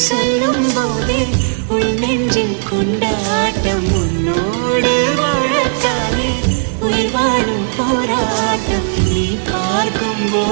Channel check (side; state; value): left; silent; digital silence